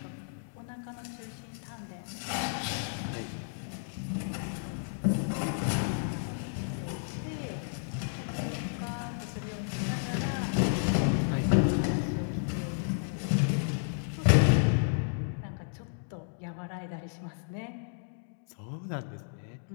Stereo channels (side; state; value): right; silent; digital silence